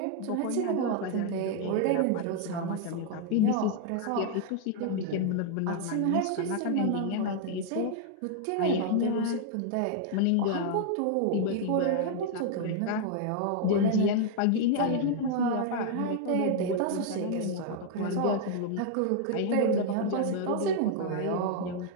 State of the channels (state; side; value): different; both; correlation 0.00